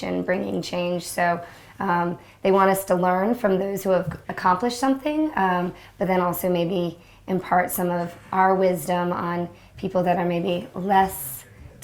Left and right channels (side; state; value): both; identical; correlation 1.00